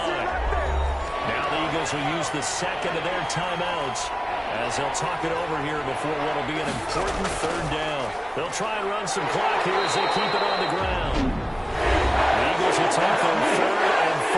Now the Eagles will use the second of their timeouts as they'll talk it over here before what will be an important third down. They'll try and run some clock here as they keep it on the ground. The Eagles will take their third and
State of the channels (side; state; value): both; identical; correlation 1.00